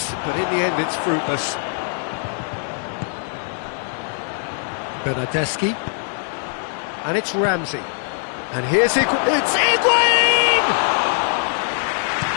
but in the end it's fruitless. Bernardeschi. And it's Ramsey. And here's it's Higuain!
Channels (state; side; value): silent; right; 65 dB below the other